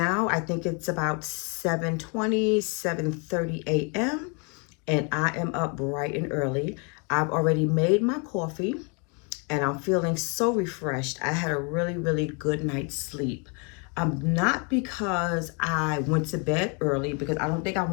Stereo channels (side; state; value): right; quieter; 34.9 dB